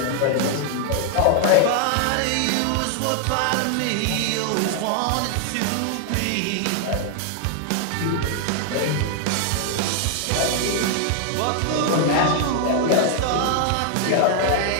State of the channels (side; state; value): both; different; correlation 0.00